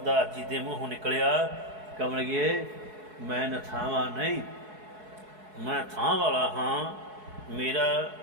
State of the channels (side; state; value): left; late; 4.7 ms